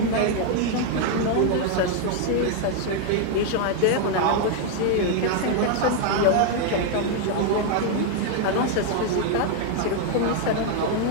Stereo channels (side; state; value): both; different; correlation 0.00